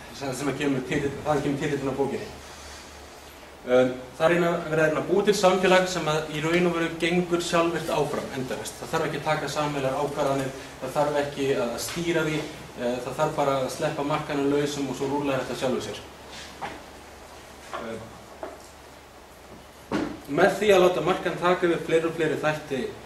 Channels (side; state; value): both; identical; correlation 1.00